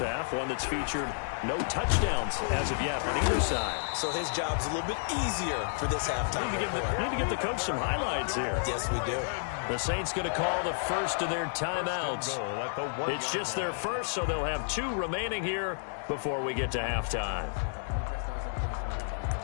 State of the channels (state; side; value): silent; right; digital silence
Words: one that's featured no touchdowns as of yet on either side. So his job's a little bit easier for this halftime. We need to give the coach some highlights here. Yes, we do. The Saints going to call the first of their timeouts. It's just their first, so they'll have 2 remaining here before we get to halftime.